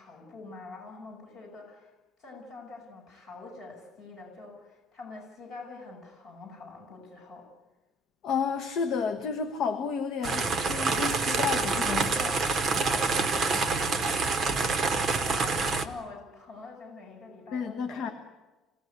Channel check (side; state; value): both; normal; correlation 0.60